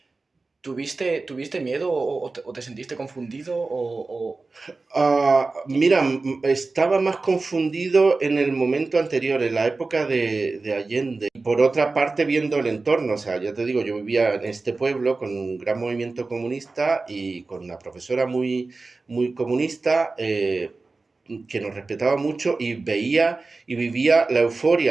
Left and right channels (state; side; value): quieter; left; 3.7 dB